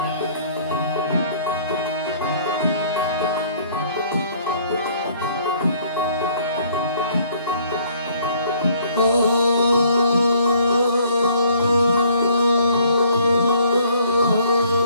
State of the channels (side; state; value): both; inverted; correlation -0.60